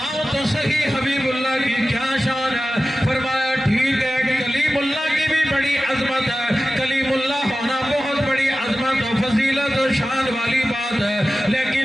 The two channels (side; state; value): both; normal; correlation 0.95